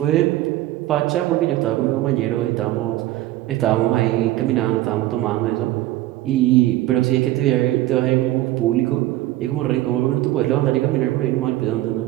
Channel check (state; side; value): quieter; left; 15.7 dB